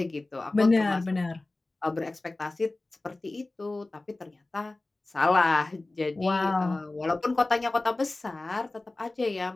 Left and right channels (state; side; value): quieter; right; 3.0 dB